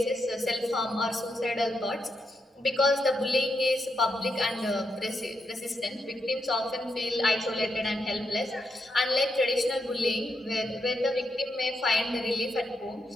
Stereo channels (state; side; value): normal; both; correlation 0.82